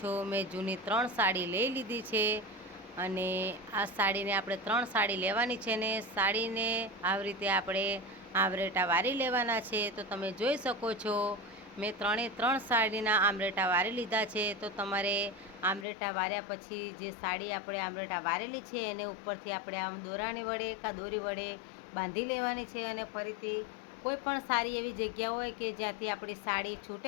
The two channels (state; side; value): drops out; right; at 15.9 s